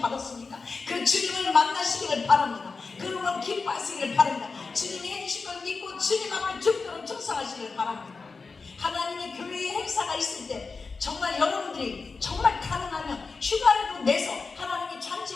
받았습니까? 그 주님을 만나시기를 바랍니다. 그러면 기뻐하시기를 바랍니다. 주님이 해주신 걸 믿고 주님 앞에 죽도록 충성하시기를 바랍니다. 하나님의 교회의 행사가 있을 때 정말 여러분들이 정말 가능하면 휴가라도 내서 하나님의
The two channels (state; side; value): quieter; right; 4.4 dB